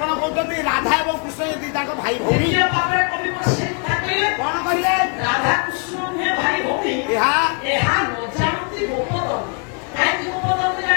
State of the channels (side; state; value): right; quieter; 36.7 dB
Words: କହୁଛନ୍ତି ରାଧା ଏବଂ କୃଷ୍ଣ ଯଦି ତାଙ୍କ ଭାଇ ଭଉଣୀ କଣ କହିଲେ? ରାଧା କୃଷ୍ଣ ଭାଇ ଭଉଣୀ ଏହା ନଜାଣନ୍ତି ଗୋପଦନ। କାହିଁକି ଗୋପଦନ